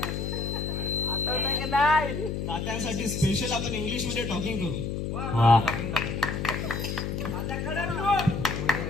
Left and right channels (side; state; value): left; noise; hum, 3 dB below the sound